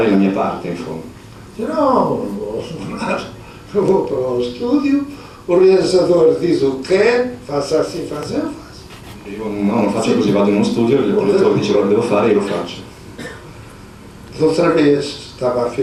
la mia parte, in fondo. Não eu vou para o estúdio, o realizador diz o que quer, faça assim, faça, eu faço. Io no, non faccio così, vado in uno studio, il direttore dice cosa devo fare e io lo faccio. Outra vez estava a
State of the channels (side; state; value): both; identical; correlation 1.00